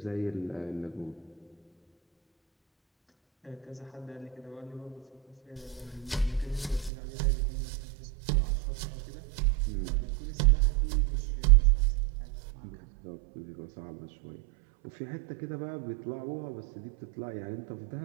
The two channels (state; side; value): drops out; left; at 6.9 s